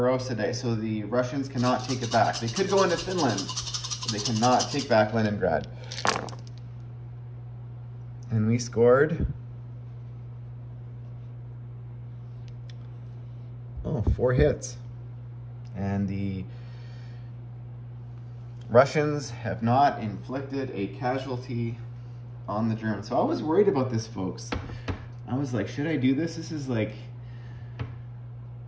Day, so the Russians cannot take it back. They could go into Finland, but they cannot take back Leningrad. And we scored 4 hits. And the Russians have not inflicted a casualty on the Germans. So I was worried about this, folks. I was like, should I do this? This is like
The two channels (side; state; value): both; identical; correlation 1.00